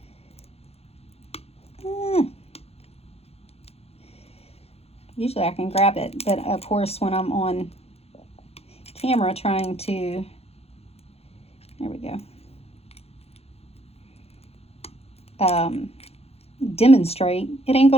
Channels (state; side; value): late; right; 0.29 ms